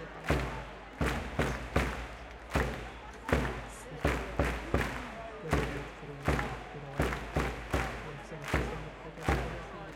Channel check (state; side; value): identical; both; correlation 1.00